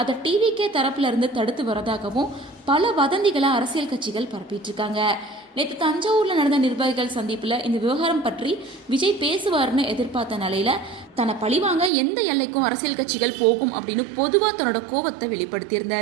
அதை டிவிகே தரப்புல இருந்து தடுத்து வரதாகவும் பல வதந்திகளை அரசியல் கட்சிகள் பரப்பிட்டு இருக்காங்க. நேற்று தஞ்சாவூர்ல நடந்த நிர்வாகிகள் சந்திப்புல இந்த விவகாரம் பற்றி விஜய் பேசுவார்னு எதிர்பார்த்த நிலையில தன்னை பழிவாங்க எந்த எல்லைக்கும் அரசியல் கட்சிகள் போகும் அப்படின்னு பொதுவா தன்னோட கோபத்தை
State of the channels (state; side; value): drops out; left; at 11.9 s